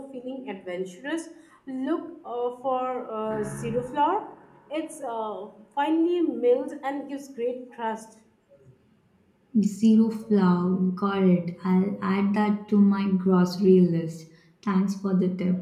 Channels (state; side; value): identical; both; correlation 1.00